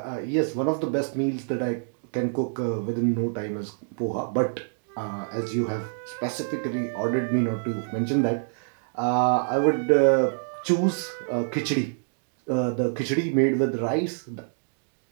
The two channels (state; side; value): silent; left; digital silence